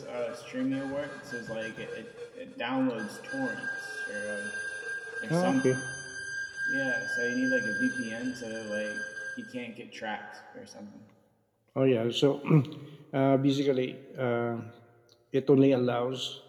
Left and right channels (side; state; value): both; identical; correlation 1.00